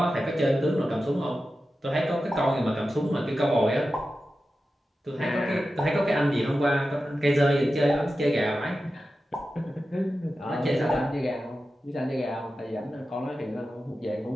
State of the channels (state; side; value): normal; both; correlation 0.92